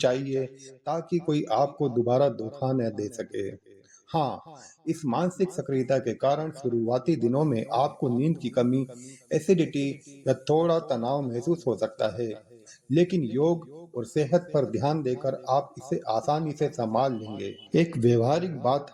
ताकि कोई आपको दोबारा धोखा न दे सके। हाँ, इस मानसिक सक्रियता के कारण शुरुआती दिनों में आपको नींद की कमी, एसिडिटी या थोड़ा तनाव महसूस हो सकता है, लेकिन योग और सेहत पर ध्यान देकर आप इसे आसानी से संभाल लेंगे। एक व्यवहारिक बात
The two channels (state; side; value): identical; both; correlation 1.00